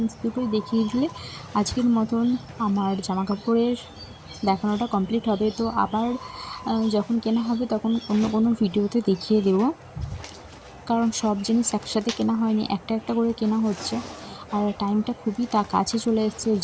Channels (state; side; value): identical; both; correlation 1.00